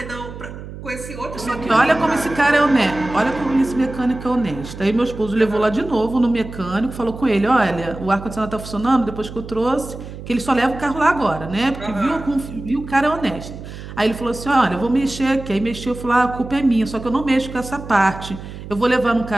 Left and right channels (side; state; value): right; noise; hum, 12 dB below the sound